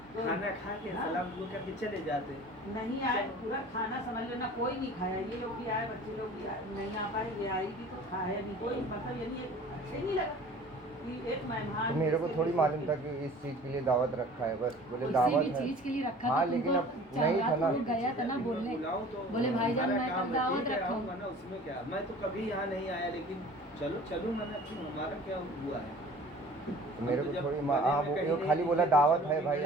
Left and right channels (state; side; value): normal; both; correlation 0.46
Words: तो खाना खा के हाँ। सलाम दुआ करके चले जाते। नहीं आए पूरा खाना समझ लो ना, कोई नहीं खाया, ये लोग भी आए, बच्चे लोग भी आए, नहीं आ पाए, ये आई भी तो खाया नहीं कोई, मतलब यानी अच्छे नहीं लगा कि एक मेहमान। तो मेरे को जिसके थोड़ी बीच मालूम में- था कि इस चीज़ के लिए दावत रखा है, बस बोले किसी दावत भी है। चीज के लिए रखा हाँ, था लेकिन तुमको, अब नहीं था ना। वो गया था ना बोलने, बुलाओ तो बोले भाईजान हमारा मैं काम कल है, दावत ठीक है, रखा आऊंगा हूँ। ना, उसमें क्या, मैं तो कभी यहाँ नहीं आया, लेकिन चलो चलूँ मैंने, क्यों, हमारा क्या हुआ है। तो मेरे हम को तो जब थोड़ी बने हाँ, में वो कहीं ये नहीं खाली बोला दिखे तो दावत चलो है भाई